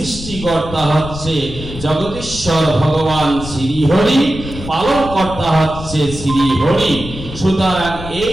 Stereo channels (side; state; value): left; noise; rumble, 11 dB below the sound